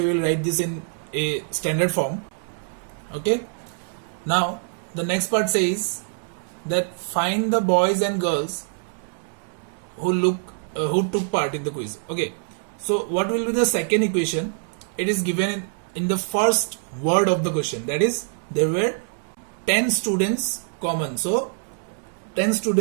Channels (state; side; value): silent; left; 62 dB below the other